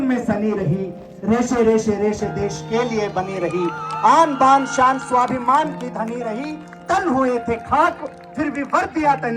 में सनी रही, रेशे रेशे रेशे देश के लिए बनी रही, आन बान शान स्वाभिमान की धनी रही। तन हुए थे खाक फिर भी वर्दियां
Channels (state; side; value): identical; both; correlation 1.00